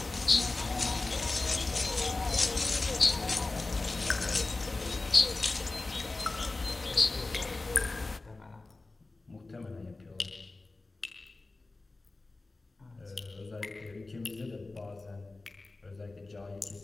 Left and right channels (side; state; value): right; quieter; 3.3 dB